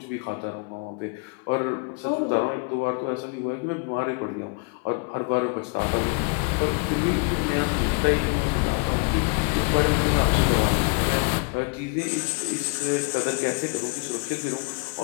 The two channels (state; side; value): quieter; right; 34.8 dB